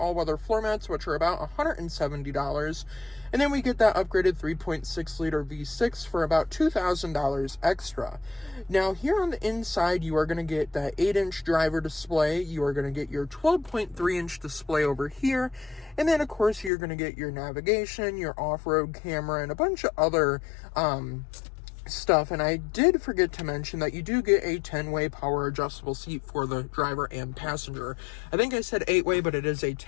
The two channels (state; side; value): drops out; right; at 16.7 s